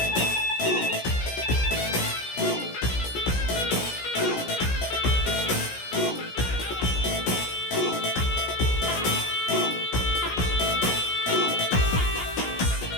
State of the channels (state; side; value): late; right; 16 ms